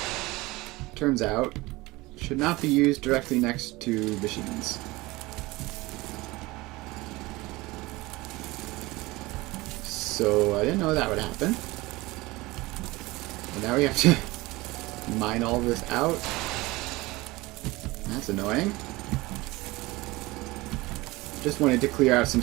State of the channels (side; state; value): left; quieter; 21.2 dB